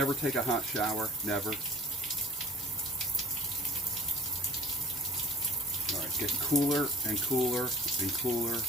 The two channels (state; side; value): normal; both; correlation 0.48